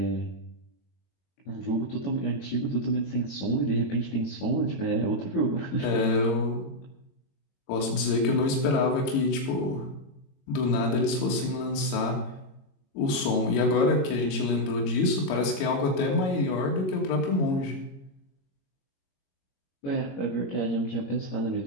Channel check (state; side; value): late; right; 22 ms